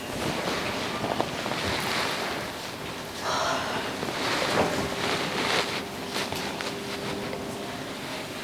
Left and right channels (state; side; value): identical; both; correlation 1.00